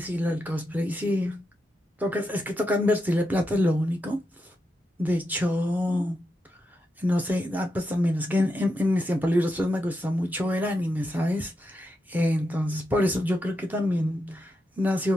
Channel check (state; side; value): normal; both; correlation 0.86